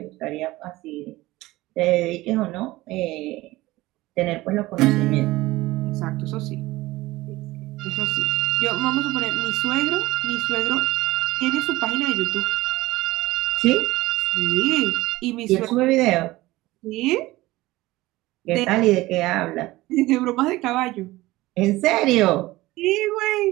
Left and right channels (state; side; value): quieter; left; 18.7 dB